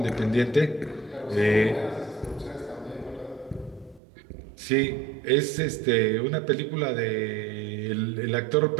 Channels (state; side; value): drops out; left; at 4.0 s